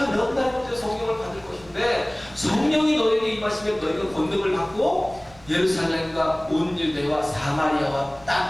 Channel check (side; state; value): right; noise; rumble, 24 dB below the sound